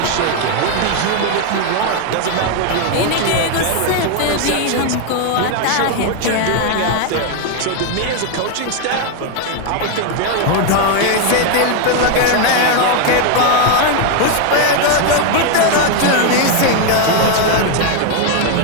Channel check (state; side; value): different; both; correlation 0.01